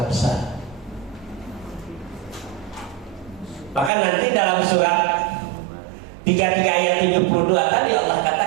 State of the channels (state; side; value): drops out; left; at 3.9 s